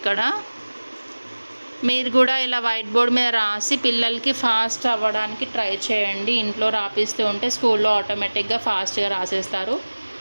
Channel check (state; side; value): inverted; both; correlation -1.00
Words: మీరు కూడా ఇలా వైట్ బోర్డ్ మీద రాసి పిల్లలకి ఫాస్ట్ అవ్వడానికి ట్రై చేయండి. ఇంట్లో రాపిస్తూ ఉంటే స్కూల్లో ఆటోమేటిక్గా ఫాస్ట్గా రాసేస్తారు.